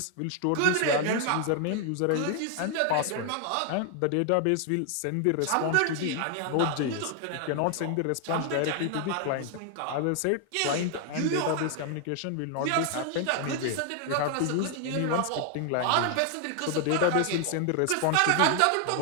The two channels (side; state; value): both; different; correlation 0.00